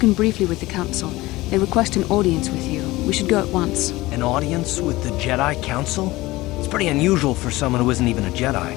briefly with the Council. They request an audience with you. We should go at once. An audience with the Jedi Council? It's pretty unusual for someone who isn't even a Jedi.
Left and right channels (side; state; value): right; quieter; 19.3 dB